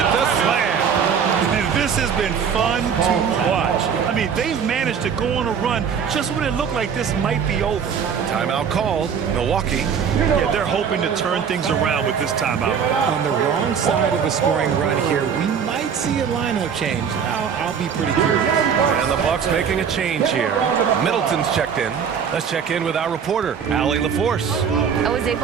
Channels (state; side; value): quieter; left; 7.2 dB